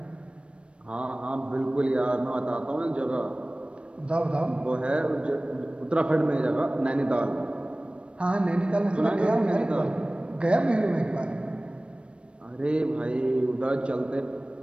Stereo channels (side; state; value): left; late; 0.059 ms